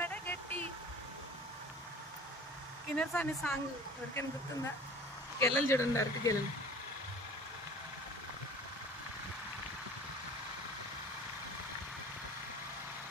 గట్టి కిన్నెరసాని సాంగ్ ఎవరికైనా గుర్తుందా? గెల్లలు చూడండి, అరటి గెల్లలు.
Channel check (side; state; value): both; normal; correlation 0.44